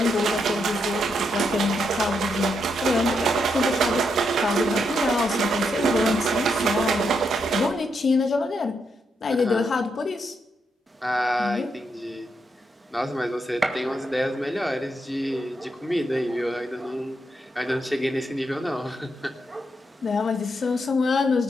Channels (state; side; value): normal; both; correlation 0.80